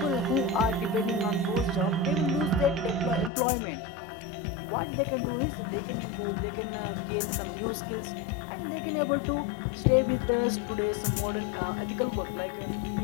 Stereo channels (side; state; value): right; drops out; at 3.3 s